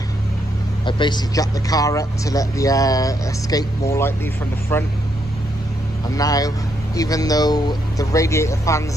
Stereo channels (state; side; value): normal; both; correlation 0.77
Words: I basically jacked the car up to let the air escape more lightly from the front. And now, even though the radiator